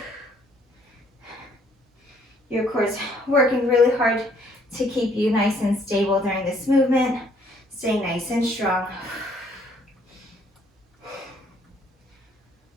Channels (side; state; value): both; normal; correlation 0.64